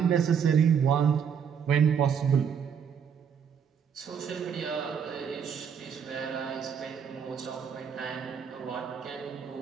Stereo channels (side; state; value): left; quieter; 7.4 dB